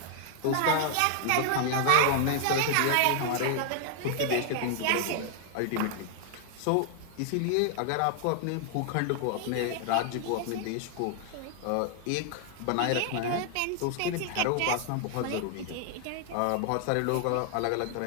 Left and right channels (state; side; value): different; both; correlation 0.00